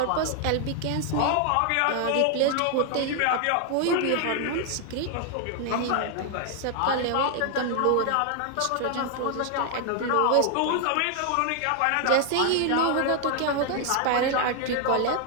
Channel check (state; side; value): different; both; correlation 0.00